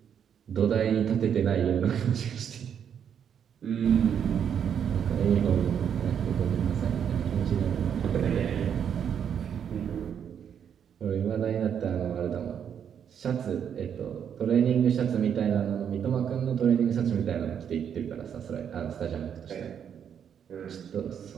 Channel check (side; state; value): left; quieter; 8.3 dB